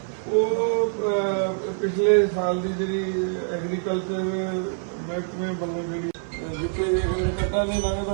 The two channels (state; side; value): silent; left; 58 dB below the other